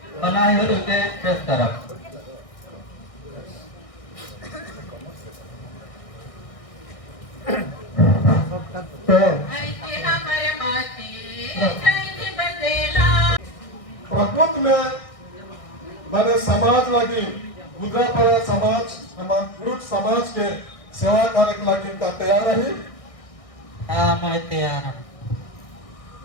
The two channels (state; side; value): late; right; 1.6 ms